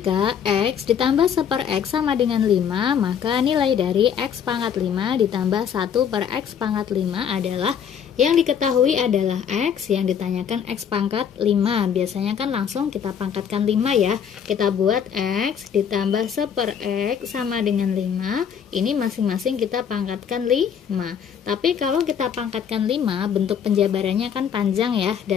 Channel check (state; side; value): quieter; right; 8.0 dB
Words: X ditambah 1/X sama dengan 5, maka nilai dari X pangkat 5 ditambah 1/X pangkat 5 adalah, yang diketahui adalah X, yang ditanyakan X pangkat 5. Biasanya kan langsung kita pangkatkan 5 ya. Kita buat X ditambah 1/X sama dengan 5. Ini masing-masing kita pangkatkan 5. Tapi kalau kita pangkatkan 5, bentuk penjabarannya kan panjang ya,